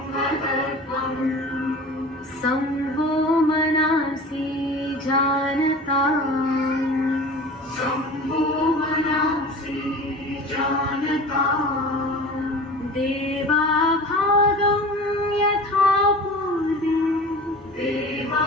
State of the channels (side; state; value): both; normal; correlation 0.37